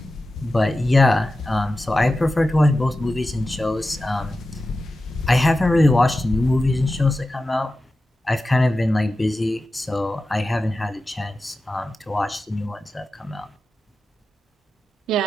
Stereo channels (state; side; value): normal; both; correlation 0.93